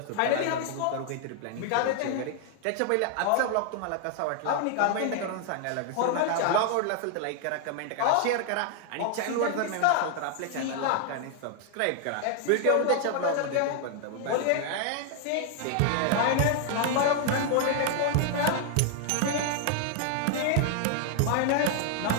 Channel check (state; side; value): different; both; correlation 0.00